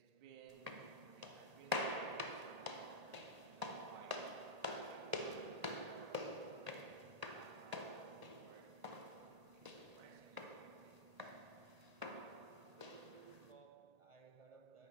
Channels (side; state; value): left; late; 1.8 ms